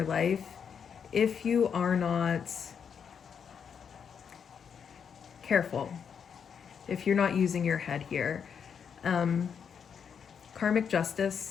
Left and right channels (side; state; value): right; quieter; 7.2 dB